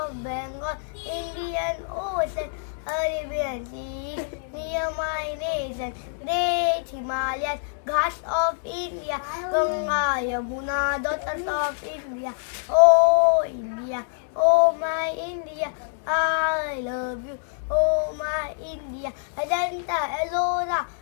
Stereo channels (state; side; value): silent; right; digital silence